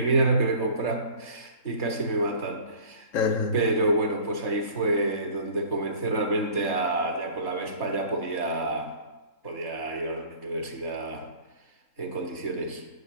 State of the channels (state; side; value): late; right; 3.8 ms